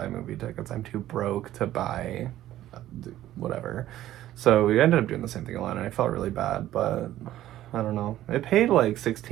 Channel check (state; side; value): quieter; left; 13.5 dB